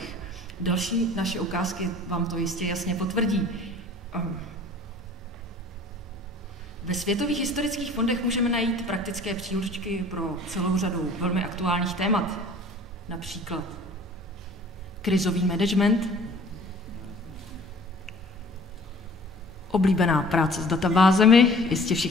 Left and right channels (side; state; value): both; normal; correlation 0.49